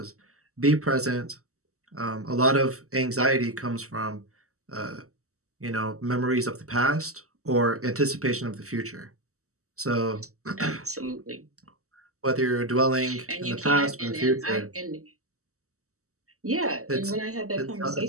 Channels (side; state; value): left; late; 0.64 ms